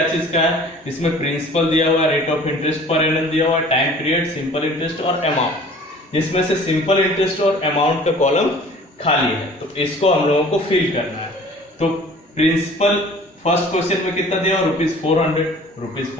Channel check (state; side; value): normal; both; correlation 0.48